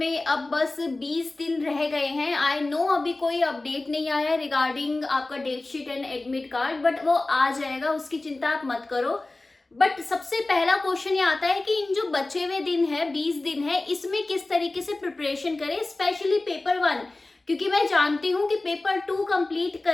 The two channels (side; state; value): right; quieter; 3.0 dB